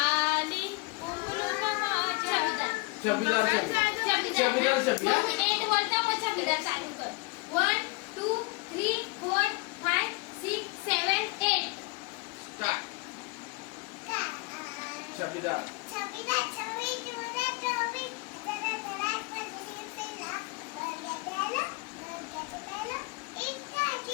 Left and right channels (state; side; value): quieter; right; 26.0 dB